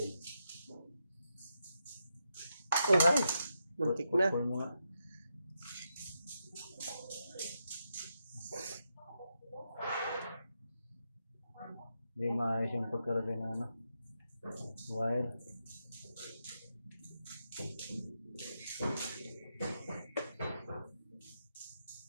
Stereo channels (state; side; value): inverted; both; correlation -0.84